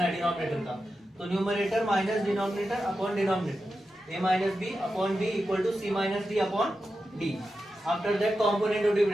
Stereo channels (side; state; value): both; normal; correlation 0.90